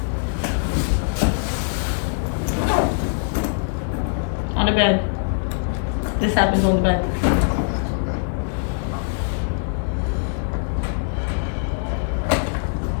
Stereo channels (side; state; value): right; silent; 58 dB below the other